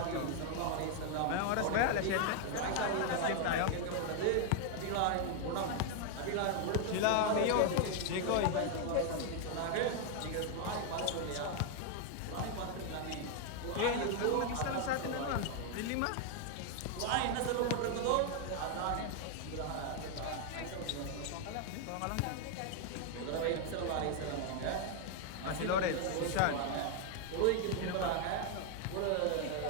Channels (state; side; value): different; both; correlation 0.00